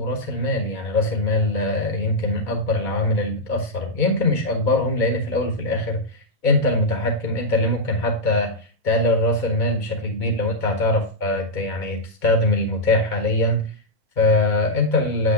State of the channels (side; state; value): right; late; 2.2 ms